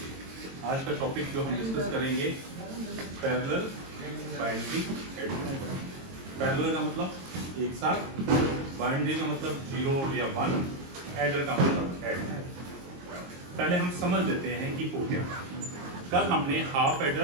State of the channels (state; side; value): late; left; 22 ms